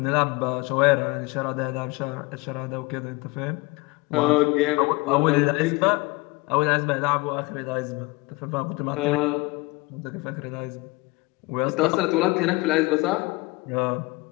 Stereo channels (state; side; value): quieter; right; 24.5 dB